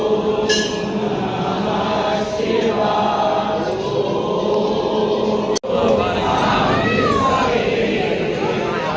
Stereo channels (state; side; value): identical; both; correlation 1.00